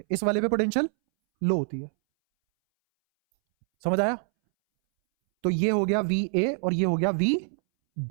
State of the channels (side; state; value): left; silent; 61 dB below the other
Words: इस वाले पे पोटेंशियल लो होती है। समझ आया? तो ये हो गया वी ए और ये हो गया वी